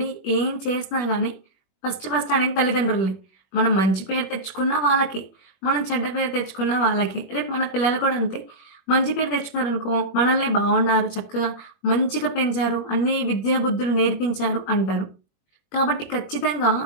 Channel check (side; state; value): right; late; 21 ms